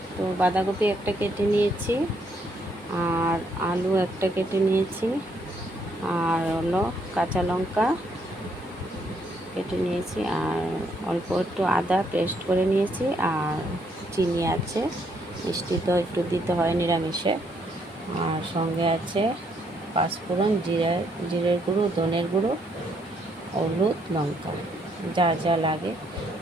তো বাঁধাকপি একটা কেটে নিয়েছি, আর আলু একটা কেটে নিয়েছি, আর হলো কাঁচা লঙ্কা কেটে নিয়েছি, আর অল্প একটু আদা পেস্ট করে নিয়েছি, আর চিনি আছে, মিষ্টি তো একটু দিতে হয় নিরামিষে। আর সঙ্গে আছে পাঁচফোড়ন, জিরের গুঁড়ো, ধনের গুঁড়ো, হলুদ, লঙ্কা, যা যা লাগে।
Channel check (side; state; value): both; normal; correlation 0.72